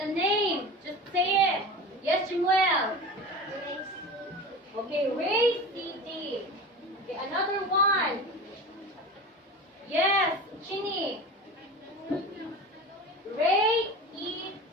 a name. Just say it. Yes, Samuel. Okay, ray CD. Okay, another one. Yes, Chini. Ray EC.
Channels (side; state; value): both; normal; correlation 0.32